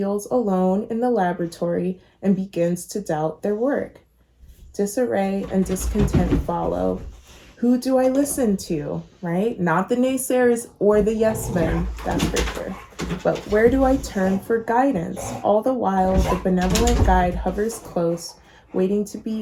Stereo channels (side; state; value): both; identical; correlation 1.00